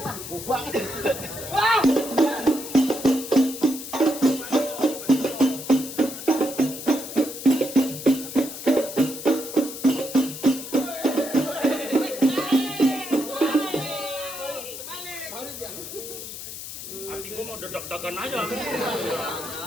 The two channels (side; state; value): left; noise; hiss, 10 dB below the sound